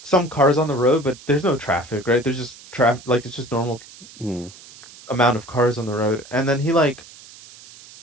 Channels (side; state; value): right; noise; hiss, 20 dB below the sound